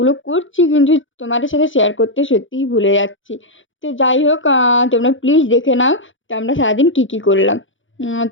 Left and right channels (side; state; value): right; late; 0.56 ms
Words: করছি, কিন্তু তোমাদের সাথে শেয়ার করতে সত্যিই ভুলে যাচ্ছি। তো যাই হোক, তোমরা প্লিজ দেখে নাও তো আমরা সারাদিন কী কী করলাম।